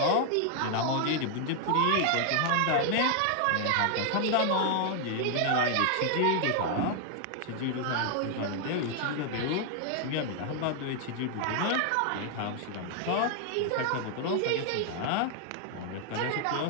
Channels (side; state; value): both; different; correlation 0.00